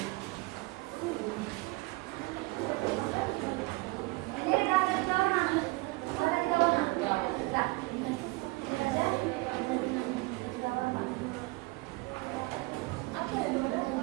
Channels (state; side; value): quieter; left; 23.9 dB